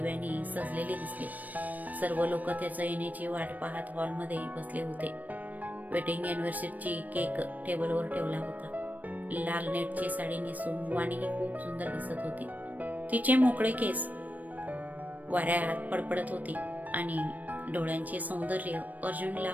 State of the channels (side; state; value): left; late; 0.079 ms